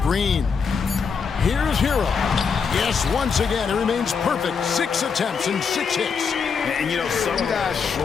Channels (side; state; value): right; quieter; 5.9 dB